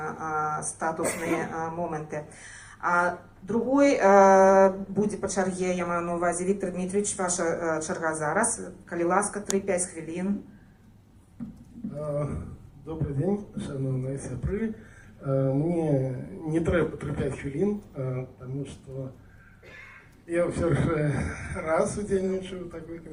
статусныя моманты. Другой будзе па чарге, я маю на ўвазе, Віктор Дмитриевич, ваша чарга зараз. Калі ласка, 3-5 хвілін. Добрый день, шановные сябры. Мне не трэба 3-5 хвілін, потому что я все же раз удзельнічаю ў такой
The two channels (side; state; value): both; identical; correlation 1.00